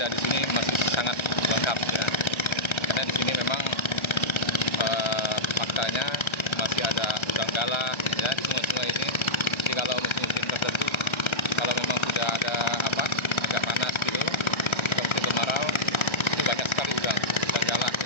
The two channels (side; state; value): right; late; 1.3 ms